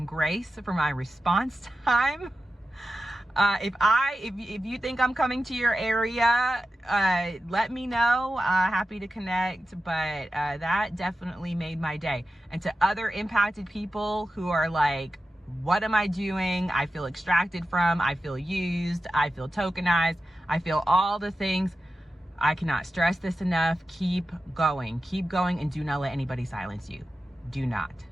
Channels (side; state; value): both; normal; correlation 0.92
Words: grace for my response time. If you think I'm coming to your area, let me know. Happy to connect. But that definitely made my day. And to other impacted people who are like, what am I doing? I feel extracted from, I feel used, I feel tokenized, I feel all the things. I cannot stress this enough. Keep going, and do not let anybody silence you. Do not.